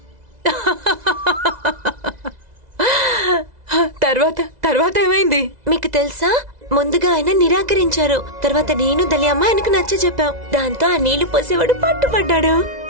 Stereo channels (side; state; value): left; late; 2.0 ms